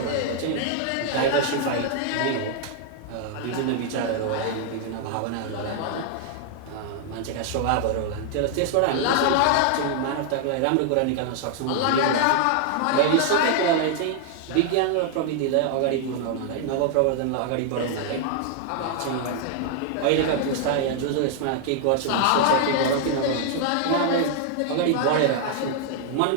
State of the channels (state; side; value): different; both; correlation 0.00